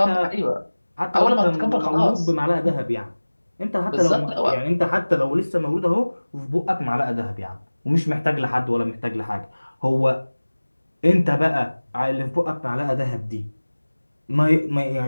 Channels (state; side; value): inverted; both; correlation -1.00